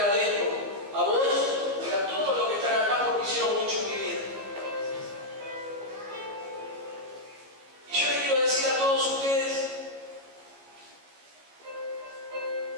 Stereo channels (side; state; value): left; late; 14 ms